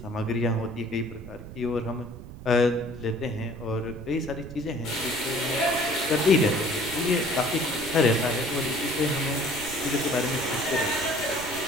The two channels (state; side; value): noise; right; rumble, 13 dB below the sound